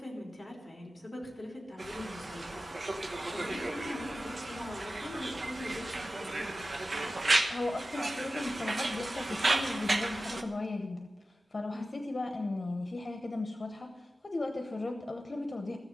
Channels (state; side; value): normal; both; correlation 0.94